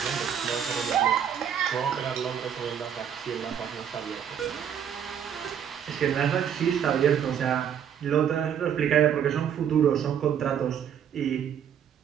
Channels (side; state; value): left; quieter; 8.7 dB